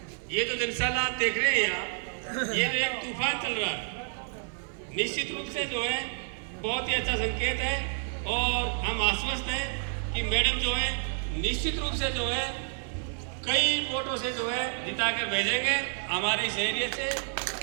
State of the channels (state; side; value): silent; left; 58 dB below the other